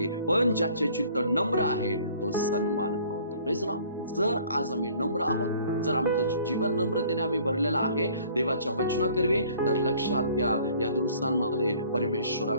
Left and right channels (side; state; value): both; inverted; correlation -0.54